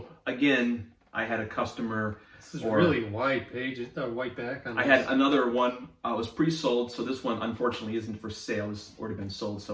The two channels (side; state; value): both; identical; correlation 1.00